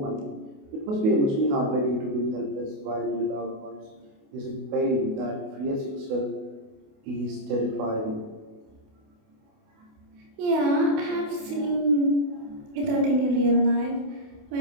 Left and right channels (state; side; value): late; left; 28 ms